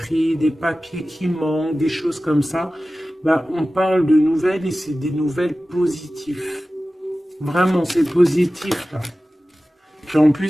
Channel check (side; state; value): both; normal; correlation 0.96